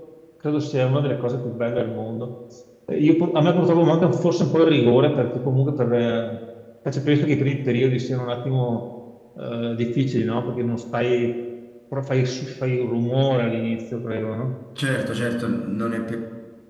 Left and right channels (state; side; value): identical; both; correlation 1.00